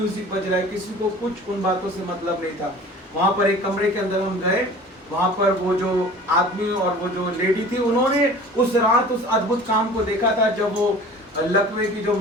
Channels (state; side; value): normal; both; correlation 0.43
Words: बज रहा है, किसी को कुछ उन बातों से मतलब नहीं था। वहां पर एक कमरे के अंदर हम गए, वहां पर वो जो आदमी और वो जो लेडी थी, उन्होंने उस रात उस अद्भुत काम को देखा था जब वो लकवे की जो